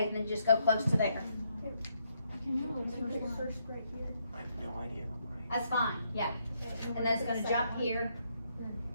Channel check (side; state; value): both; inverted; correlation -0.75